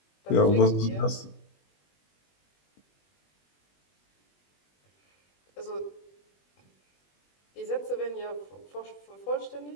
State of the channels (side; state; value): right; late; 21 ms